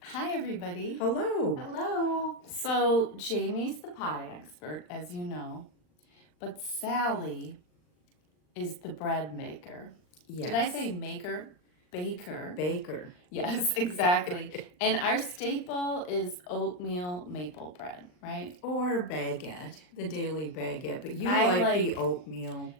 Hi, everybody. Hello. Hello. So, Jamie's the pie expert, as you know, but Sally is the bread maker. Yes. Did I say maker? Baker. Baker. Yes, exactly. And our staple is oatmeal maple bread, right? Or baguette, the daily baguette, but you I like the oatmeal.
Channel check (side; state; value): right; late; 39 ms